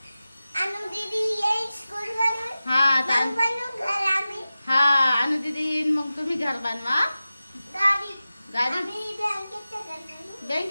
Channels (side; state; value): both; inverted; correlation -0.95